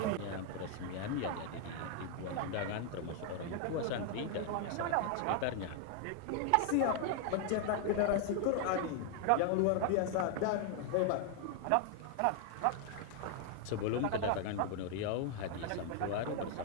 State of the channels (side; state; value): both; different; correlation 0.00